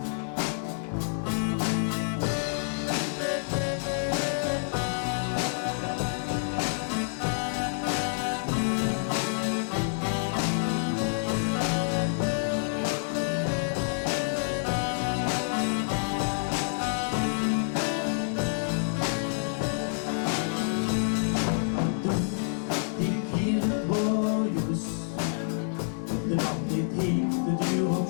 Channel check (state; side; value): silent; right; 59 dB below the other